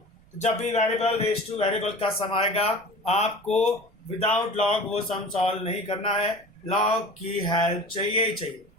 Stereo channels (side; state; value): right; noise; rumble, 29 dB below the sound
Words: तो जब भी वेरिएबल रेज टू वेरिएबल का सम आएगा आपको विदाउट लॉग वो सम सॉल्व नहीं करना है, लॉग की हेल्प चाहिए ही चाहिए।